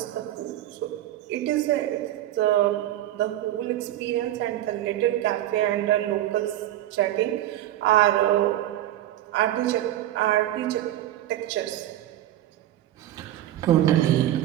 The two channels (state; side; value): quieter; left; 13.4 dB